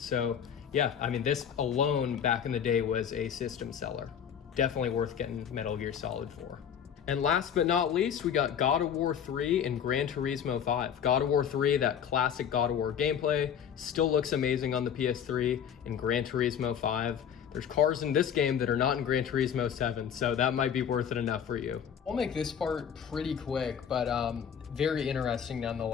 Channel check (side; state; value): right; quieter; 8.3 dB